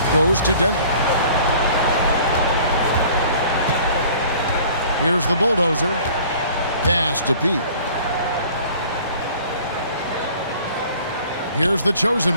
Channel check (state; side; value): inverted; both; correlation -0.50